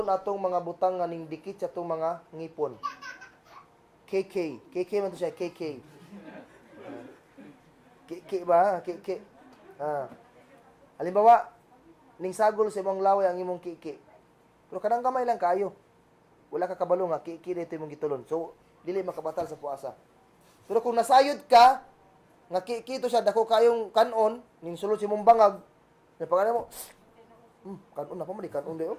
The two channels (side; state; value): both; identical; correlation 1.00